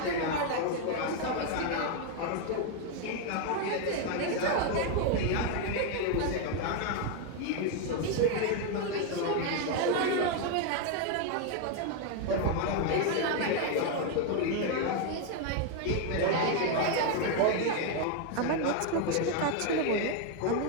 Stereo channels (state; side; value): different; both; correlation 0.01